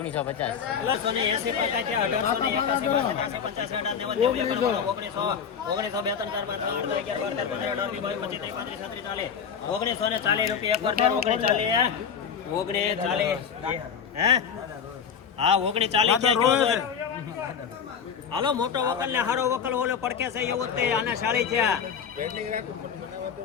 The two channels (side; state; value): right; quieter; 7.1 dB